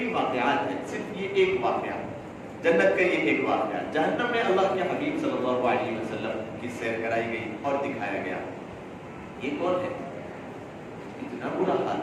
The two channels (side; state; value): both; identical; correlation 1.00